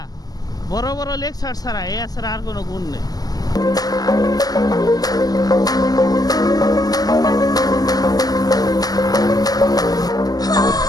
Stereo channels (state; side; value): late; right; 0.19 ms